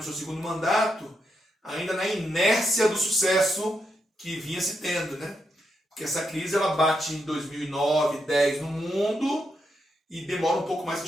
seu segundo mandato ainda na inércia do sucesso que vinha se tendo, né? Porque essa crise, ela bate em 2009, 2010 no mundo e demora um pouco mais para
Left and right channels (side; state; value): both; normal; correlation 0.82